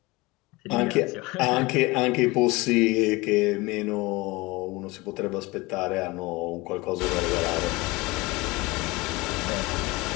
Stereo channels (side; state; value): right; quieter; 22.7 dB